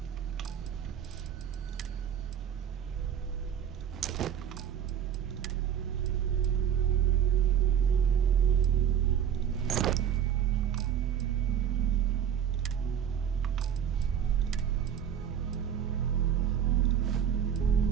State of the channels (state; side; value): quieter; left; 8.8 dB